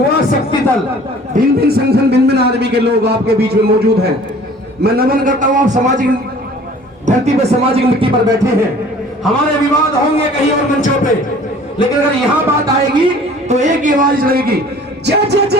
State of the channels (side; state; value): both; normal; correlation 0.49